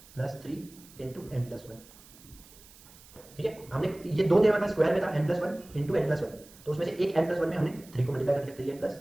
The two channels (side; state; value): right; noise; hiss, 23 dB below the sound